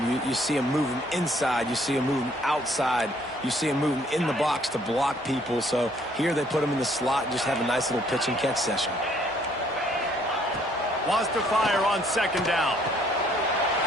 You see him moving inside. You see him moving outside. You see him moving in the box to block people. So here they put him in the slot and just have a nice little pitch and catch session. Wants to fire on second down.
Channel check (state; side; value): normal; both; correlation 0.64